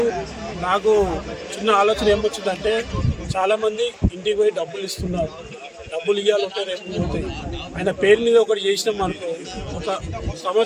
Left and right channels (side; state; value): both; identical; correlation 1.00